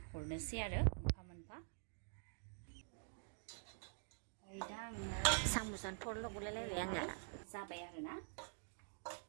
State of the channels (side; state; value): left; silent; digital silence